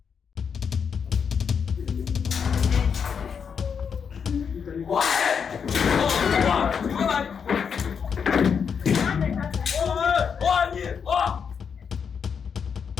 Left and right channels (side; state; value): right; quieter; 6.7 dB